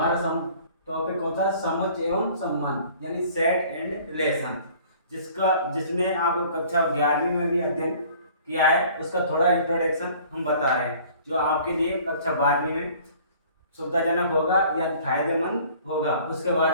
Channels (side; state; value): both; inverted; correlation -0.51